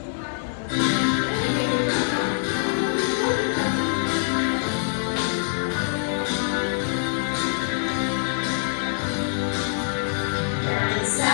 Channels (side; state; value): right; silent; digital silence